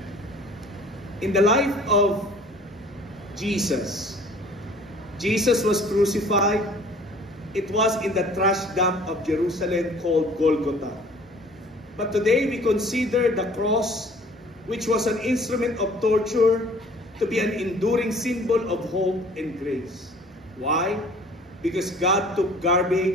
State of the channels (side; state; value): both; normal; correlation 0.51